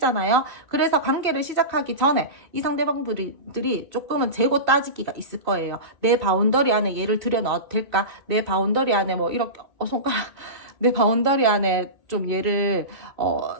그래서 관계를 시작하기 전에 이 상대방 분들이 조금은 재고 따지기가 있을 거예요. 내 바운더리 안에 얘를 들여넣어도 될까? 내 바운더리 안에 뭐 이렇게 손가락 내 바운더리 안에 좀 얘를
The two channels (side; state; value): left; late; 2.5 ms